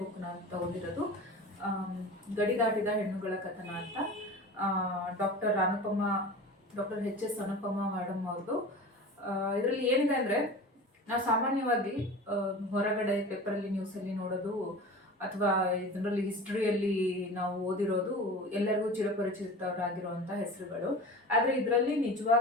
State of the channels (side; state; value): both; normal; correlation 0.35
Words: ಬುಕ್ನ ತಗೊಂಡಿರೋದು ಗಡಿ ದಾಟಿದ ಹೆಣ್ಣುಗಳ ಕಥನ ಅಂತ. ಡಾಕ್ಟರ್ ಎಚ್ ಎಸ್ ಅನುಪಮ ಮೇಡಮ್ ಅವ್ರದ್ದು. ಇದರಲ್ಲಿ ಏನಿದೆ ಅಂದರೆ, ನಾವು ಸಾಮಾನ್ಯವಾಗಿ ಹೊರಗಡೆ ಪೇಪರಲ್ಲಿ ನ್ಯೂಸಲ್ಲಿ ನೋಡೋದು ಅಥವಾ ಇದರಲ್ಲಿ ಹಿಸ್ಟ್ರಿಯಲ್ಲಿ ನಾವು ಓದಿರೋದು ಎಲ್ಲರಿಗೂ ಚಿರಪರಿಚಿತರಾಗಿರುವಂಥ ಹೆಸರುಗಳು. ಆದರೆ ಇದರಲ್ಲಿ